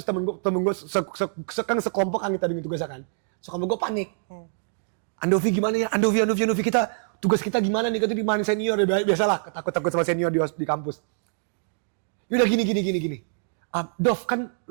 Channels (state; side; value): silent; left; digital silence